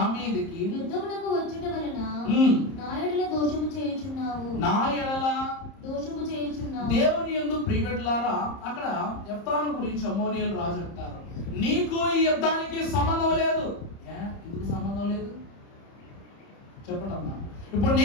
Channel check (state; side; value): late; right; 30 ms